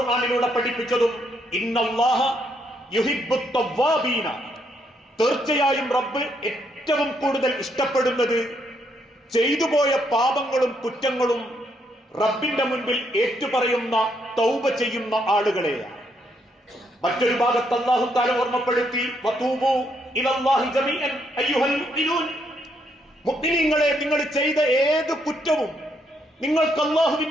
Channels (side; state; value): both; normal; correlation 0.74